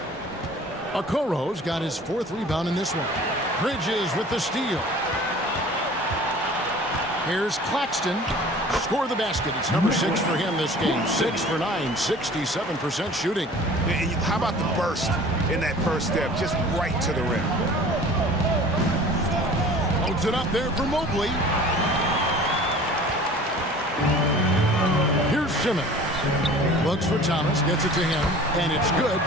Okoro's got his 4th rebound in this one. Bridges with the steal. Here's Claxton. Score the basket. It's number 6 for him this game. 6 for 9, 67% shooting. And how about the burst in that first step, just right to the rim? Holds it up there for Mobley. Here's Simmons. Looks for Thomas, gets it to him, and it's good.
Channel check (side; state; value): both; normal; correlation 0.45